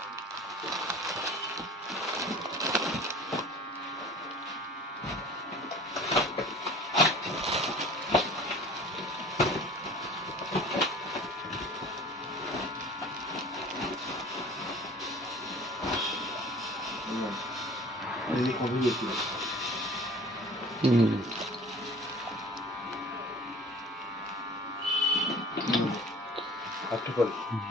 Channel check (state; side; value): normal; both; correlation 0.45